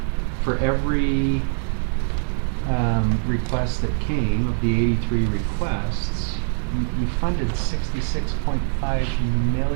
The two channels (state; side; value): silent; left; digital silence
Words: for every request that came of the 83 requests, you funded $66.5